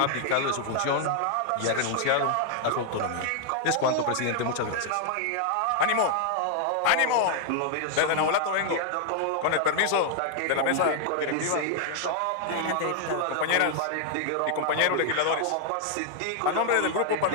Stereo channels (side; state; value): both; different; correlation -0.01